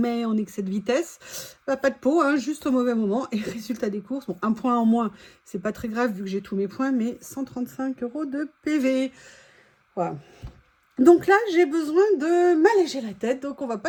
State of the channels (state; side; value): identical; both; correlation 1.00